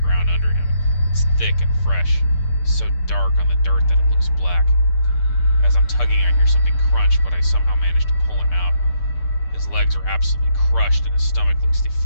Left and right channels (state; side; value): late; right; 6.7 ms